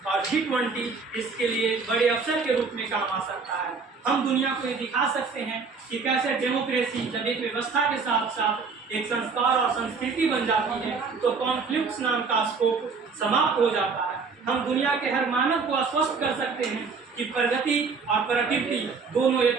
और G20 इसके लिए बड़े अवसर के रूप में काम आ सकता है। हम दुनिया को ये दिखा सकते हैं कि कैसे डेमोक्रेसी जब एक व्यवस्था के साथ साथ एक संस्कार और संस्कृति बन जाती है तो कॉन्फ्लिक्ट्स नाम का स्कोप समाप्त हो जाता है। हम दुनिया के हर मानव को आश्वस्त कर सकते हैं कि प्रगति और प्रोडक्टिविटी दोनों एक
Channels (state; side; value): quieter; left; 4.9 dB